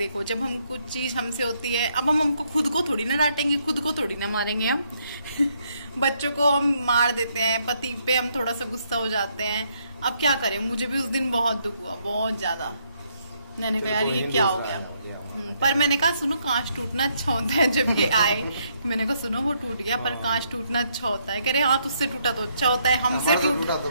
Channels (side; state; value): both; inverted; correlation -0.73